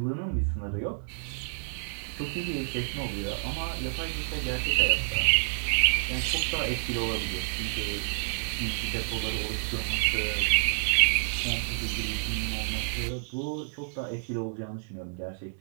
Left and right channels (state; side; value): silent; left; 58 dB below the other